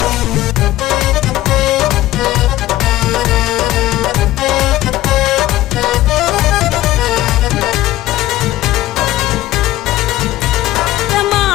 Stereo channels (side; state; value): right; quieter; 15.4 dB